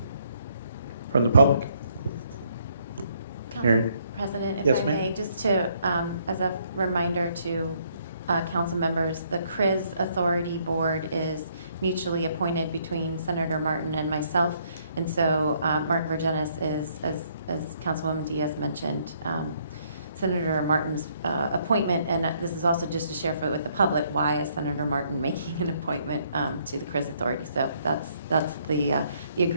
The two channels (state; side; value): inverted; both; correlation -0.68